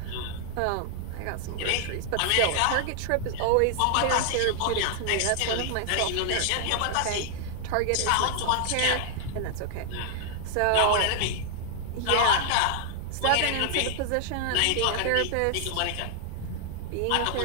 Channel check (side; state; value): both; different; correlation 0.00